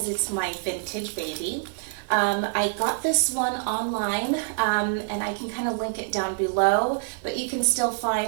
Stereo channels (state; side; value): silent; left; 60 dB below the other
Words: it's my vintage baby. I got this one online, and I can kind of link it down below, but you can still